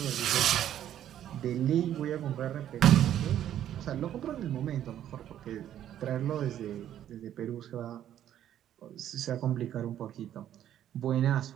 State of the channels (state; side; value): quieter; left; 11.1 dB